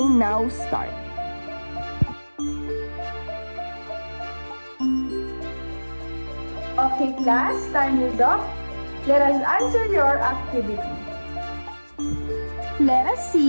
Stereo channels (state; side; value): inverted; both; correlation -1.00